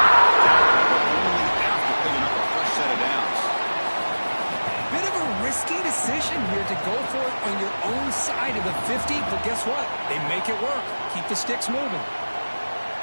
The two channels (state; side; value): inverted; both; correlation -1.00